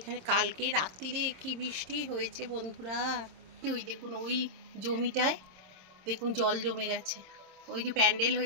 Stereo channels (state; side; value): late; left; 26 ms